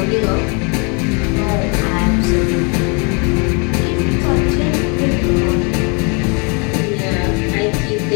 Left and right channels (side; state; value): right; quieter; 34.0 dB